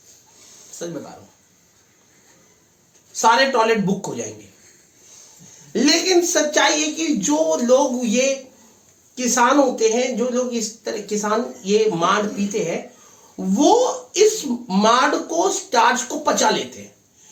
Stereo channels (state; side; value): identical; both; correlation 1.00